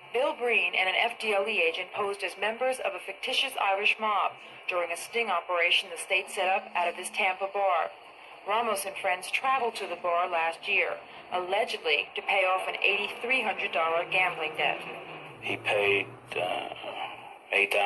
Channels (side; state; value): both; identical; correlation 1.00